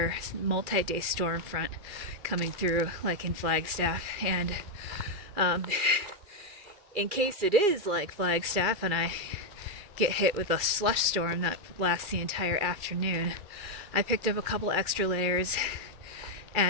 multi-day storm front coming through like in Flagstaff. And in case it is like Flagstaff and I get hit with a slush storm that lasts the entire afternoon, I picked up a couple extra layers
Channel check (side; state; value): left; late; 2.4 ms